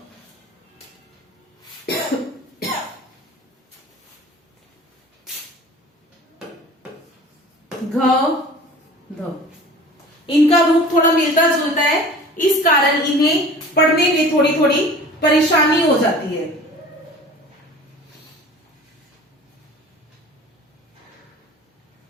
घ, ध। इनका रूप थोड़ा मिलता जुलता है, इस कारण इन्हें पढ़ने पढ़ने में थोड़ी थोड़ी परेशानी हो जाती है।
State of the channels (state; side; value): normal; both; correlation 0.42